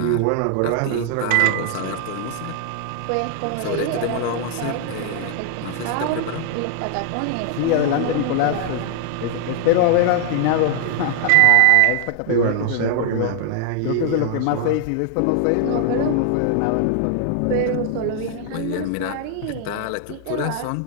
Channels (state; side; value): different; both; correlation 0.00